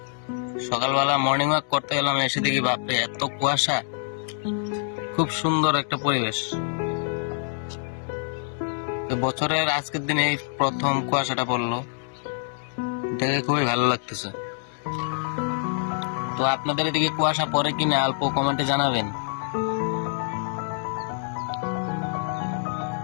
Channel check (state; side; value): silent; right; digital silence